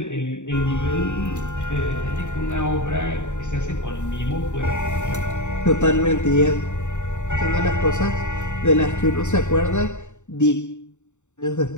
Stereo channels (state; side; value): late; right; 0.84 ms